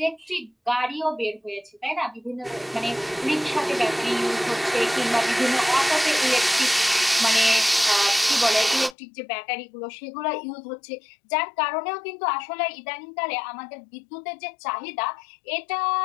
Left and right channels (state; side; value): drops out; right; at 9.0 s